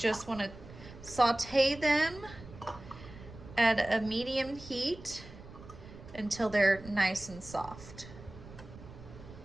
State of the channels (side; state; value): right; noise; rumble, 16 dB below the sound